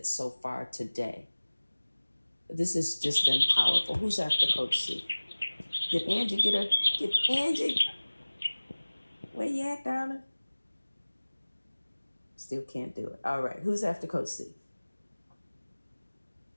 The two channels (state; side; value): inverted; both; correlation -1.00